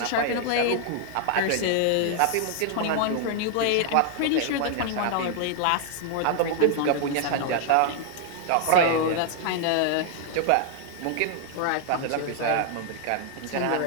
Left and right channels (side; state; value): both; different; correlation 0.00